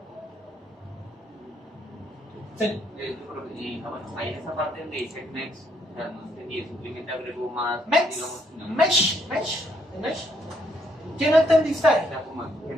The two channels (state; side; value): normal; both; correlation 0.72